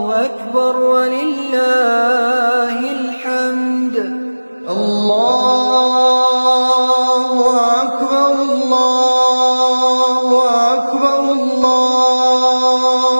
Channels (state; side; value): inverted; both; correlation -1.00